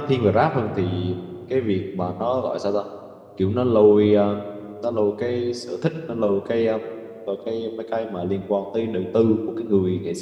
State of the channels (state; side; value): identical; both; correlation 1.00